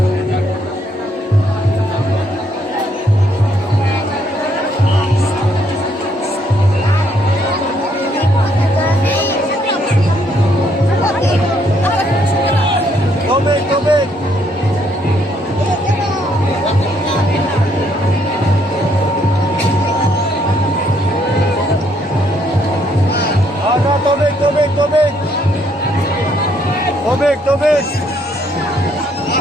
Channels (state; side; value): normal; both; correlation 0.70